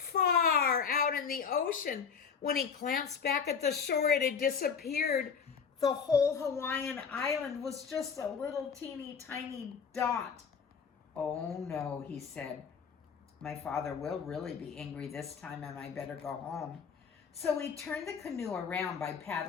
out in the ocean. When he glanced back at the shore, it had disappeared. The whole Hawaiian island was just a little teeny tiny dot. "Oh no," he said. "My father will really be angry this time, and I better go home." So he turned the canoe around by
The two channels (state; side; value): quieter; right; 6.3 dB